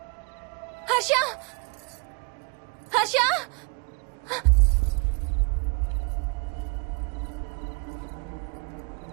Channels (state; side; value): quieter; left; 32.5 dB